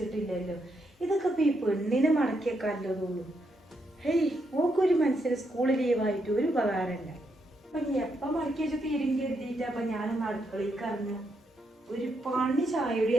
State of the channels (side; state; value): both; normal; correlation 0.79